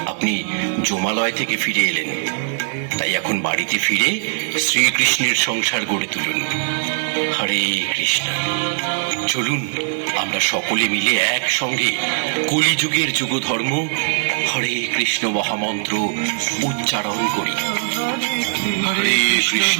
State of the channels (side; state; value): left; silent; digital silence